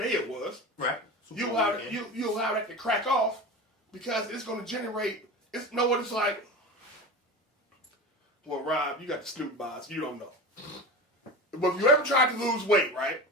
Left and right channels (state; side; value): normal; both; correlation 0.29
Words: it was. Right. You allow that to crack off because it's going to generate. Know what it's like. Well, Rob, you got the Snoop box. You don't know. But if you ever tried to lose weight, right?